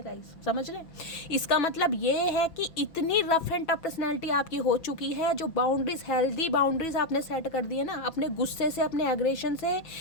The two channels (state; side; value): late; right; 5.9 ms